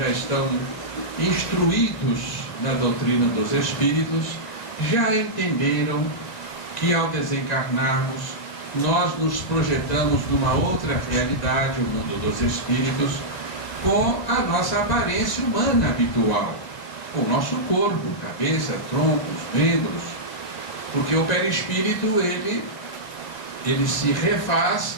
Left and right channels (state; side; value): late; right; 1.9 ms